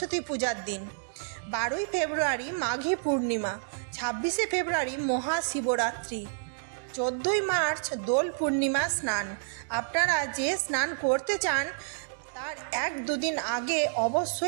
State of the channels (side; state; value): left; silent; digital silence